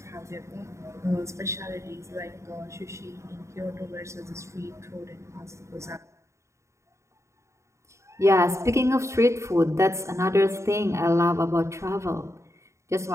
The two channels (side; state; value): left; late; 0.14 ms